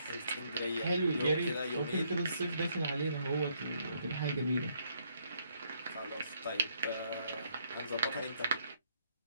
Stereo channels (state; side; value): inverted; both; correlation -0.71